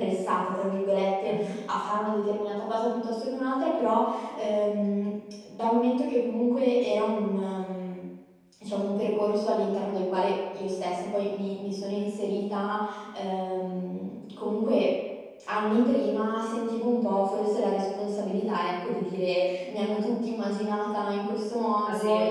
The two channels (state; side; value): identical; both; correlation 1.00